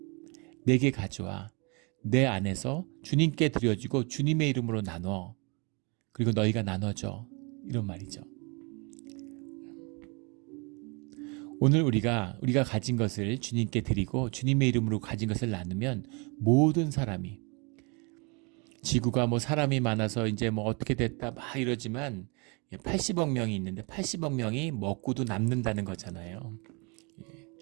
내게 가져와 내 안에서 주님께 드려지고 주님의 이름으로 나눠 그리고 너희가 나눠줘 이런 말이죠. 오늘 우리가 가진 것을 주님께 드리고 주님의 이름으로 가진 것을 나누면 모든 사람이 지구가 뭐 사람이 많아서 이제 뭐 어떻게 됐다 막 이러지만 80억 명이 있는데 80억 명이 먹고도 남는다는 거잖아요.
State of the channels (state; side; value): quieter; left; 31.2 dB